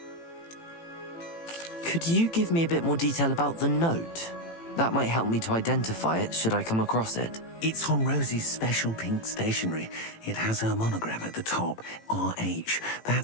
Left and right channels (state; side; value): late; right; 18 ms